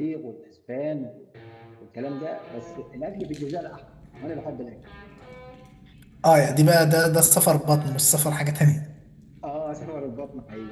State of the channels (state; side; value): identical; both; correlation 1.00